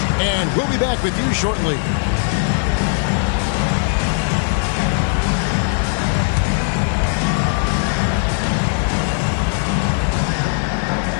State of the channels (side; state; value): right; silent; 65 dB below the other